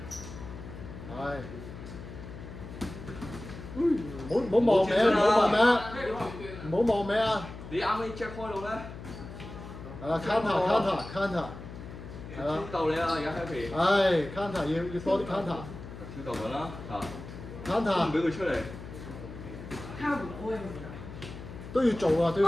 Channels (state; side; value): noise; left; hum, 12 dB below the sound